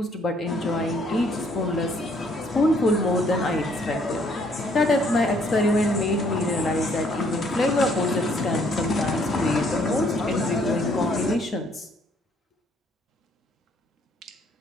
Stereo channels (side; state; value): both; normal; correlation 0.65